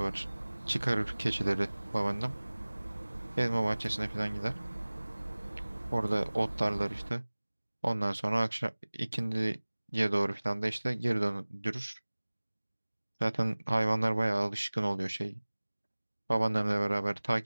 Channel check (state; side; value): inverted; both; correlation -1.00